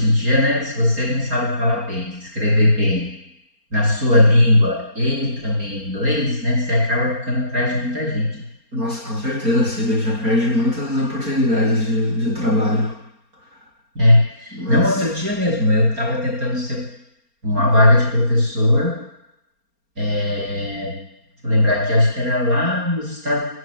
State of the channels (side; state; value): left; late; 4.3 ms